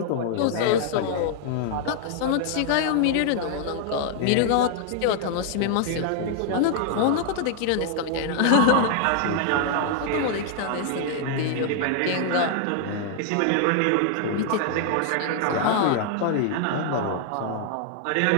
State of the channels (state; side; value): different; both; correlation 0.00